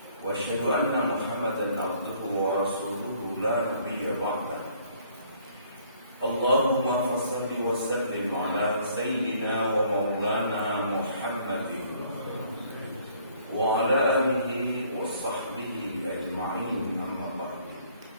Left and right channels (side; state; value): both; inverted; correlation -0.61